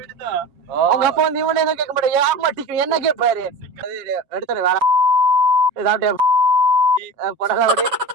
அவங்க அப்பா வந்து இவனே எதுவும் கேட்க மாட்டேன் ஏமாட்டிக்கு என்ன கேட்பாரு எடுத்துரு வேற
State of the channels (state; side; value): late; left; 7.1 ms